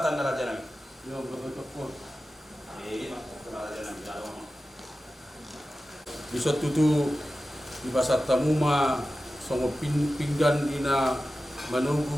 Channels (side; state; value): both; normal; correlation 0.94